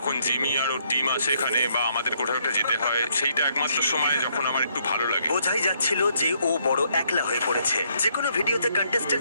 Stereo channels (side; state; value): both; inverted; correlation -0.71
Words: জিমি আর ওর টিম আসে এখানে বা আমাদের কোথাও একটা যেতে হয়, সেইটা একমাত্র সময় যখন আমার একটু ভালো লাগে। বোঝাই যাচ্ছিল যে ও বড় একলা হয়ে পড়েছে। যে কোনো ভিডিওতে